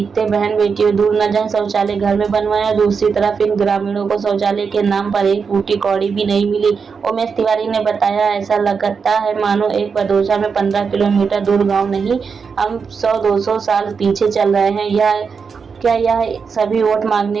बहन बेटियों दूर न जाएं, शौचालय घर में बनवाएं, और दूसरी तरफ इन ग्रामीणों को शौचालय के नाम पर एक फूटी कौड़ी भी नहीं मिली। उमेश तिवारी ने बताया, ऐसा लगता है मानो एक बदोशा में 15 किलोमीटर दूर गाँव नहीं, हम 100-200 साल पीछे चल रहे हैं। क्या यह सभी वोट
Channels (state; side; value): quieter; left; 5.6 dB